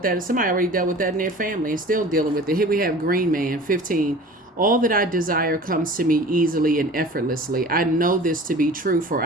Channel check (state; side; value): normal; both; correlation 0.42